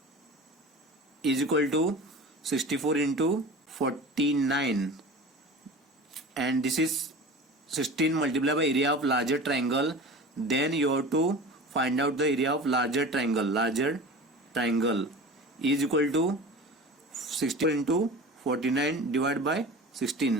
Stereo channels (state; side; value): normal; both; correlation 0.36